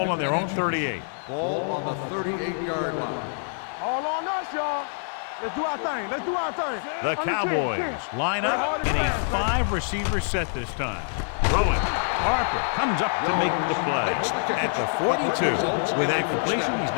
on their own 38. Ball on the 38-yard line. All on us, y'all. Let's do our thing. Let's do our thing. The Cowboys line up in a 5-receiver set this time. Throwing. Harper comes up to make the play at the 42. With that completion, he's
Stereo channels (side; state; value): right; silent; digital silence